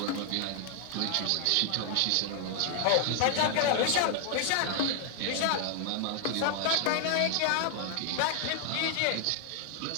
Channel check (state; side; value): different; both; correlation 0.00